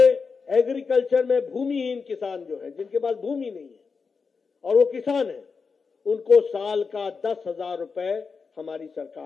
एग्रीकल्चर में भूमिहीन किसान जो है, जिनके पास भूमि नहीं है और वो किसान है, उनको साल का 10,000 रुपए हमारी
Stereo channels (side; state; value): right; quieter; 5.1 dB